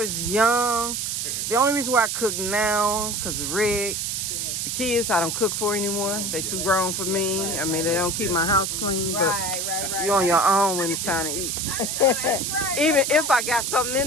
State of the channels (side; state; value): right; noise; hiss, 2 dB below the sound